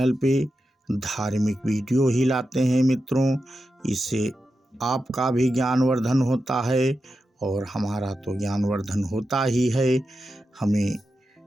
पे धार्मिक वीडियो ही लाते हैं मित्रों। इससे आपका भी ज्ञानवर्धन होता है और हमारा तो ज्ञानवर्धन होता ही है। हमें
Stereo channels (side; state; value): both; normal; correlation 0.90